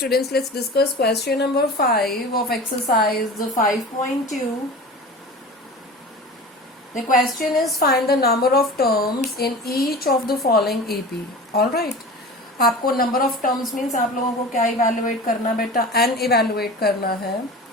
let's discuss question number 5 of exercise 5.2. The question is find the number of terms in each of the following AP. Alright. आपको number of terms means आप लोगों को क्या evaluate करना बेटा? N evaluate करना है.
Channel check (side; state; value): both; normal; correlation 0.35